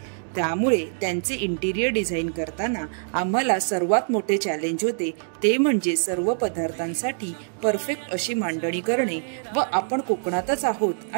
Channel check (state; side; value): silent; left; digital silence